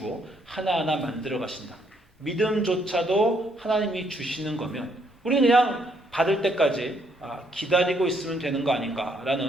하나하나 만들어 가신다. 믿음조차도 하나님이 주시는 거면 우리는 그냥 받을 때까지 기다리고 있으면 되는 거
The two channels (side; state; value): both; normal; correlation 0.71